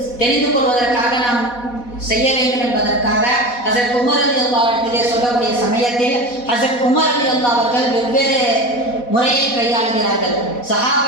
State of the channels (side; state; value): right; late; 4.1 ms